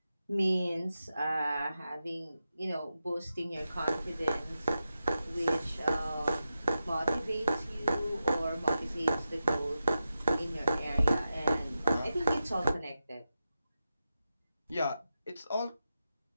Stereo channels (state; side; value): inverted; both; correlation -0.89